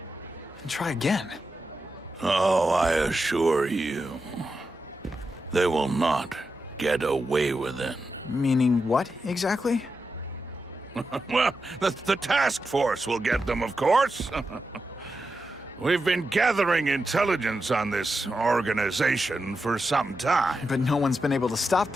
And try again. Oh, I assure you, they will not get away with it. Meaning what, exactly? Well, the task force will get them, of course. We've been gathering intelligence on this organization for some time. But no one's been able to stop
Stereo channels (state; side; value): normal; both; correlation 0.88